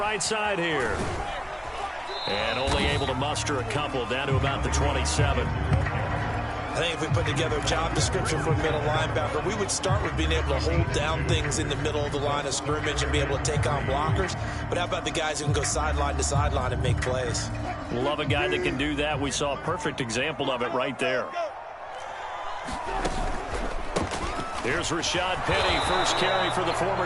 side here. And only able to muster a couple, down to about the 27. I think if we put together a job description for a middle linebacker, we would start with being able to hold down things in the middle of the line of scrimmage and be able to take on blockers. But how about the guys who can go sideline to sideline and make plays? Love a guy that can do that. We saw a perfect example of it right there. Here's Rashad Penny, first carry for the former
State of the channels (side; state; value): both; identical; correlation 1.00